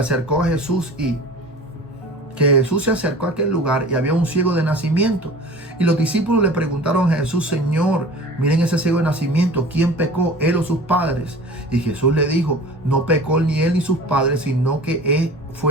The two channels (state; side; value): normal; both; correlation 0.40